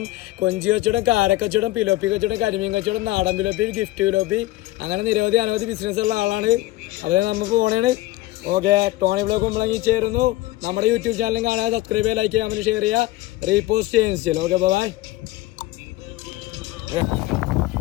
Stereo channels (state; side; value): quieter; right; 17.7 dB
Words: കൊഞ്ചി കച്ചവടം, കാരക്കച്ചവടം, പിലോപ്പി കച്ചവടം, കരിമീൻ കച്ചവടം, നാടൻ പിലോപ്പി, ഗിഫ്റ്റ് പിലോപ്പി, അങ്ങനെ നിരവധി അനവധി ബിസിനസ് ഉള്ള ആളാണ്. അപ്പോൾ നമുക്ക് പോണേണ്. ഓക്കെ, ടോണി വ്ളോഗ് നമ്മളെങ്കിൽ ചേരുന്നു. നമ്മുടെ യൂട്യൂബ് ചാനലും കാണാൻ സബ്സ്ക്രൈബ് ചെയ്യുക, ലൈക്ക് ചെയ്യുക, കമൻറ്റ് ഷെയർ ചെയ്യുക, റീപോസ്റ്റ് ചെയ്യുകയും ചെയ്യും. Okay, bye.